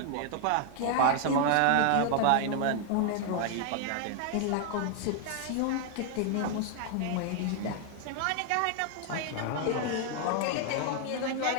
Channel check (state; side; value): different; both; correlation 0.00